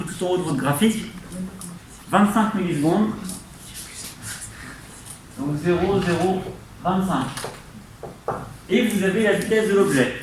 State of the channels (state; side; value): identical; both; correlation 1.00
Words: tout en haut de votre graphique. 25 millisecondes. Donc 0, 0, 25. Et vous avez la vitesse de l'objet.